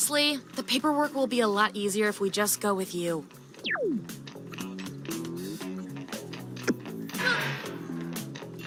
the paperwork will be a lot easier if we just go with you.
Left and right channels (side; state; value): both; identical; correlation 1.00